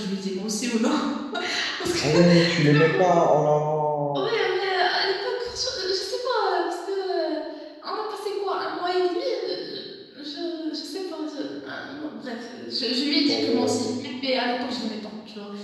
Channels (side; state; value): both; identical; correlation 1.00